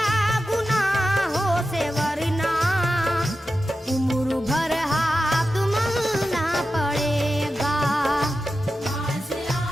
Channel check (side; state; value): both; normal; correlation 0.92